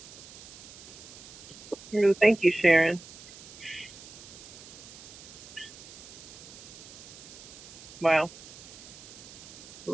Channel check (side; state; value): right; noise; hiss, 17 dB below the sound